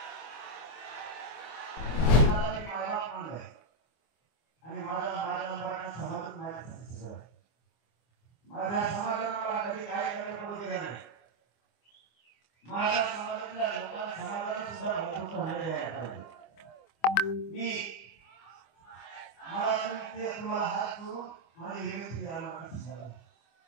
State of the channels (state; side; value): late; right; 25 ms